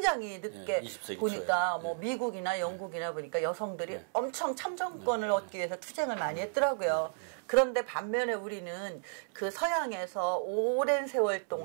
늦게 20세기 보니까 초에. 뭐 미국이나 영국이나 보니까 여성들이 엄청 참정권을 얻기 위해서 투쟁을 많이 했더라고요. 그런데 반면에 우리는 그 서양에서 오랜 세월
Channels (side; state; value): left; silent; 56 dB below the other